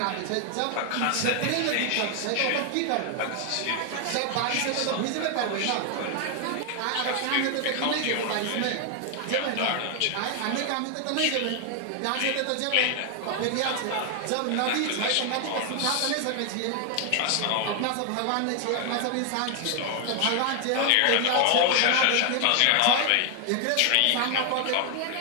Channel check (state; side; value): different; both; correlation 0.00